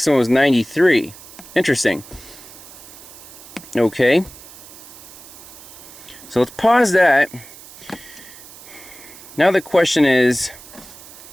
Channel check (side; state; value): right; noise; hiss, 18 dB below the sound